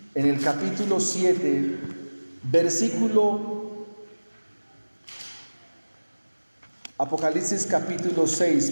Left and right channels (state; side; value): inverted; both; correlation -1.00